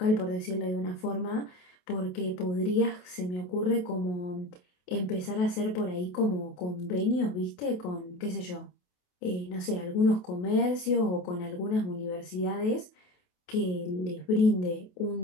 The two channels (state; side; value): late; right; 28 ms